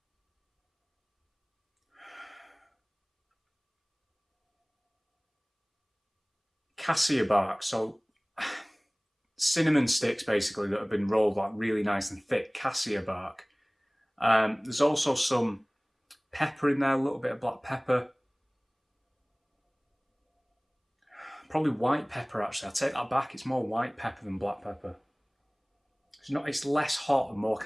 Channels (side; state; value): both; identical; correlation 1.00